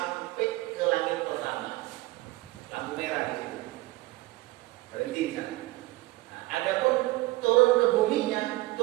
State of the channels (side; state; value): left; quieter; 19.8 dB